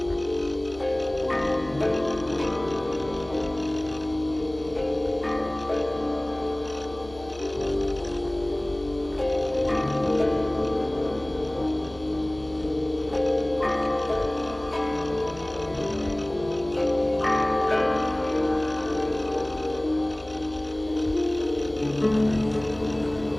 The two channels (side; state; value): left; noise; hum, 19 dB below the sound